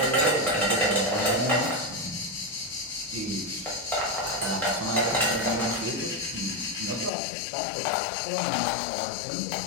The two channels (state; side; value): drops out; right; at 7.1 s